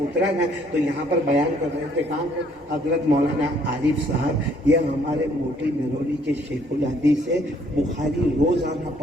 اترا نا تو یہاں پر بیان کر رہے تھے کام حضرت مولانا عارف صاحب. یہ ہمارے موٹی مہرولی کے شیخ الحدیث سے بخاری روزانہ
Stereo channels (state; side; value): normal; both; correlation 0.64